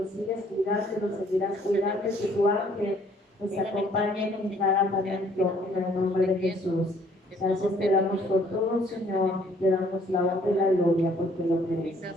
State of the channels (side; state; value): both; normal; correlation 0.61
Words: sigues cuidando y los seguirás cuidando. Que tu ángel los acompañe en cada momento en el nombre de Jesús. Gracias te damos por todo, Señor. Te damos la honra y la gloria porque lo